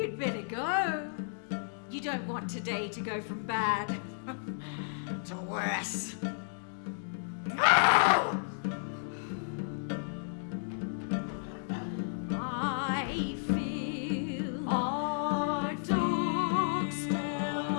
better go. You don't want today to go from bad to worse. I feel a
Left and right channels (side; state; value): right; silent; digital silence